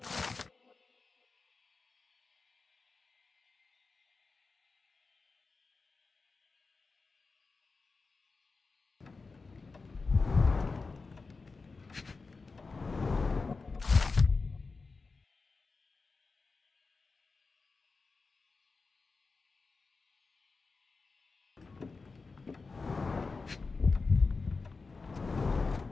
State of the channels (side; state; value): right; quieter; 4.2 dB